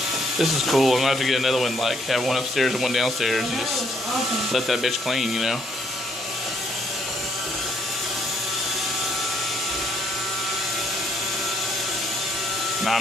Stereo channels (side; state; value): both; normal; correlation 0.69